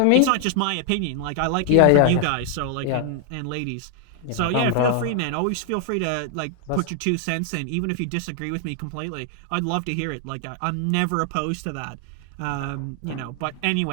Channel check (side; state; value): both; different; correlation 0.00